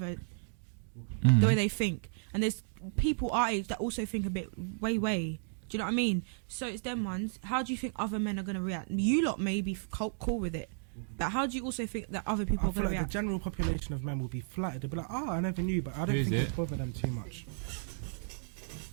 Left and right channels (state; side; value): silent; left; digital silence